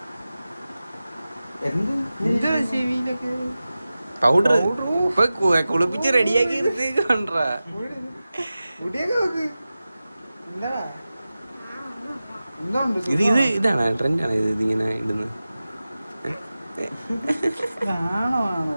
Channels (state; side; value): inverted; both; correlation -0.95